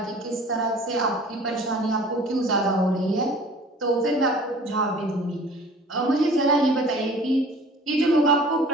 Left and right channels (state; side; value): normal; both; correlation 0.47